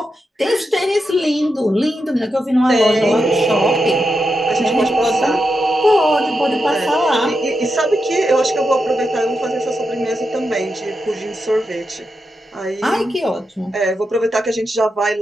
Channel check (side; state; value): both; normal; correlation 0.87